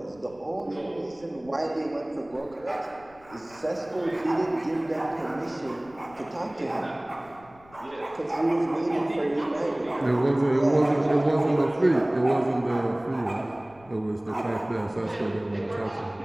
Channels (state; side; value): noise; left; rumble, 26 dB below the sound